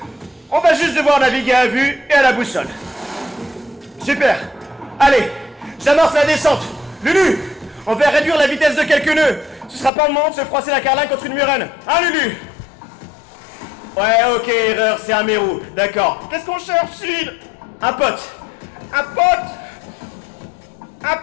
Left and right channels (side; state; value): right; drops out; at 9.9 s